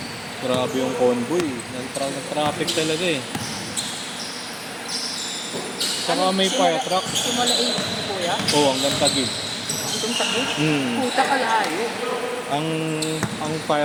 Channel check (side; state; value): both; identical; correlation 1.00